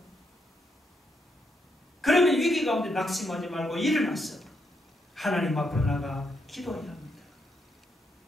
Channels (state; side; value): normal; both; correlation 0.79